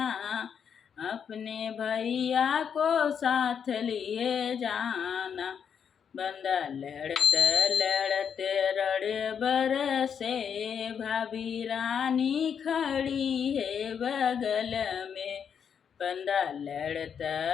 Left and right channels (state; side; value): quieter; right; 7.4 dB